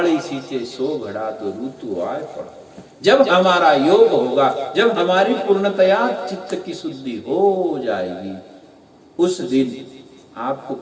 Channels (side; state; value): both; identical; correlation 1.00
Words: सींचे सो घड़ा तो ऋतु आए पड़ा। जब हमारा योग होगा, जब हमारी पूर्णतया चित्त की शुद्धि हो जाएगी, उस दिन आपको